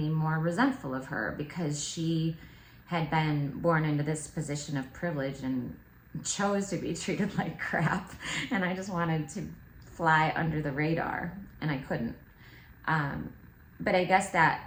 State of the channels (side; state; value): both; identical; correlation 1.00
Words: more resentful of her because she had been born into this position of privilege and chose to be treated like crap. And I just wanted to fly under the radar, and I couldn't. But I guess